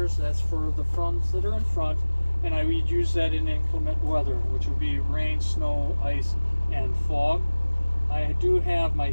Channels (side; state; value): both; inverted; correlation -1.00